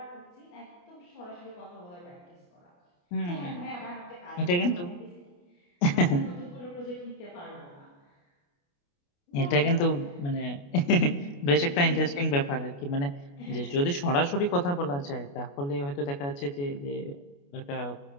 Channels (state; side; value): late; right; 28 ms